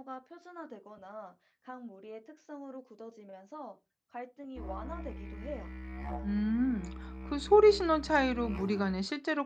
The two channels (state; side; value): identical; both; correlation 1.00